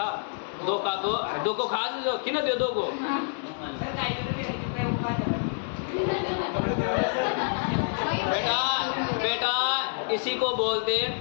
दो का दो, दो को खास दो कि ना दे दो को। बेटा इसी को बोलते हैं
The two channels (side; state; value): right; silent; digital silence